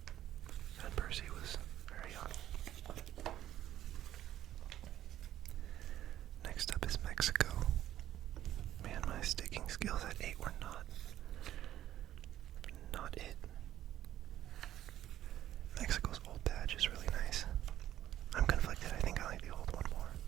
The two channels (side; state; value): left; quieter; 12.4 dB